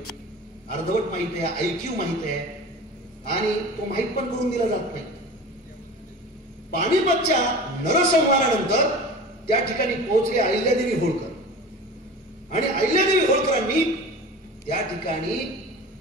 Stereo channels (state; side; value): normal; both; correlation 0.35